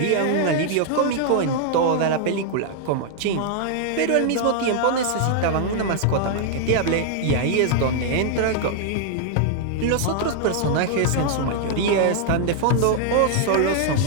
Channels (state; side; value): different; both; correlation -0.01